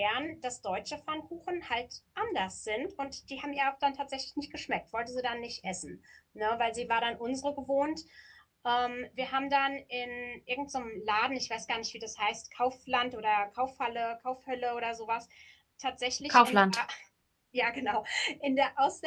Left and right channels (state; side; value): identical; both; correlation 1.00